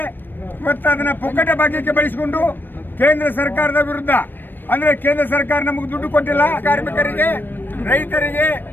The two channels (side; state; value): right; late; 0.094 ms